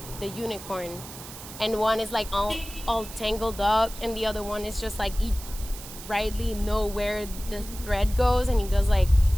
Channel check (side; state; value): right; noise; hiss, 14 dB below the sound